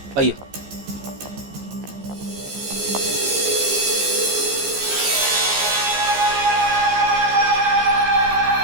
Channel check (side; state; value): left; late; 15 ms